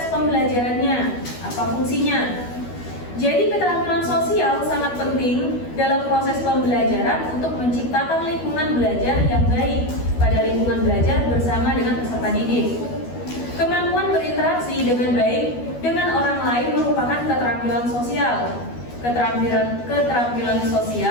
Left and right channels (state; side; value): late; right; 12 ms